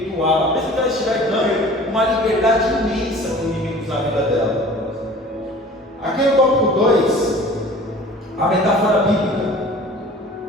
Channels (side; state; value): both; normal; correlation 0.45